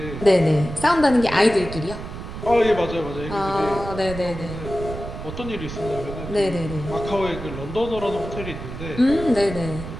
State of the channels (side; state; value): right; noise; rumble, 9 dB below the sound